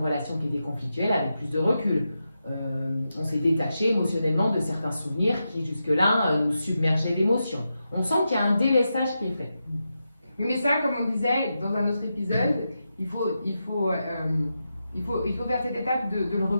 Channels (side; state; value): both; inverted; correlation -0.88